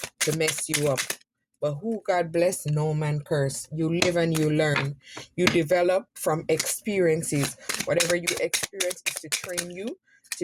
to mess you up. But who God bless, no man curse. You live and you learn. You develop from experiences. Whatever you experience is to train you to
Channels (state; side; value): identical; both; correlation 1.00